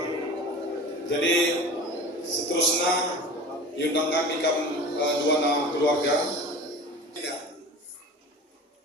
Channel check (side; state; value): both; normal; correlation 0.37